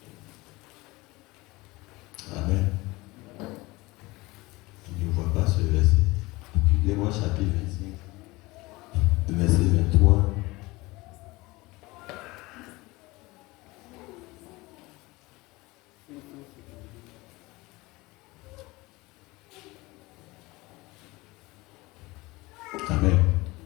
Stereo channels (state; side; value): quieter; right; 21.9 dB